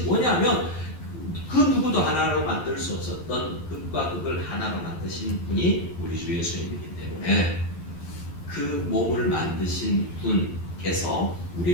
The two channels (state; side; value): late; right; 11 ms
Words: 뭐냐면 그 누구도 하나로 만들 수 없었던 극과 극을 하나로 만드신 분이 우리 주 예수님이기 때문에 그 몸을 만드신 분께서